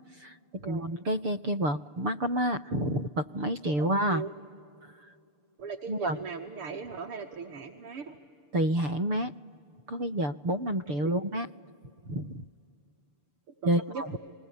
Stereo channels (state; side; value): late; left; 6.8 ms